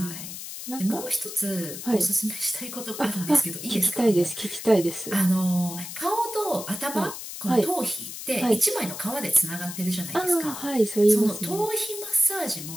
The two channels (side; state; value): left; noise; hiss, 9 dB below the sound